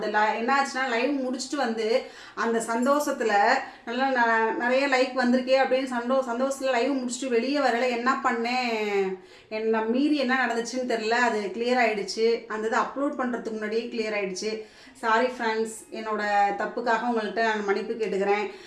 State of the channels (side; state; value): both; identical; correlation 1.00